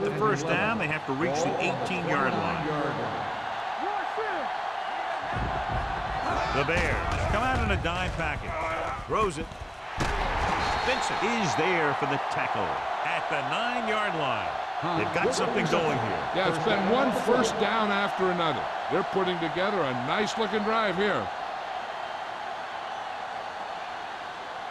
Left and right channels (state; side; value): identical; both; correlation 1.00